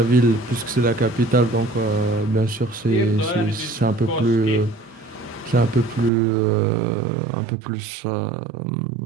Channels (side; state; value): left; drops out; at 6.1 s